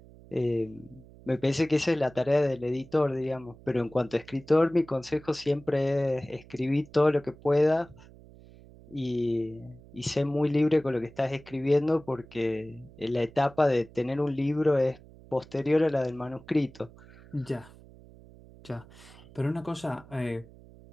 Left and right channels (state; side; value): noise; right; hum, 22 dB below the sound